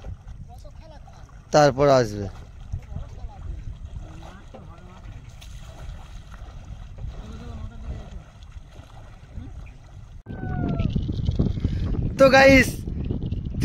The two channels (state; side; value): identical; both; correlation 1.00